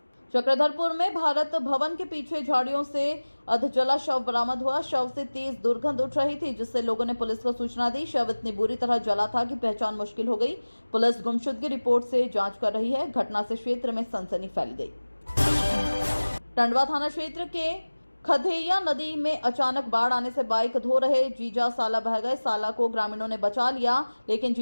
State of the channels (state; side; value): inverted; both; correlation -1.00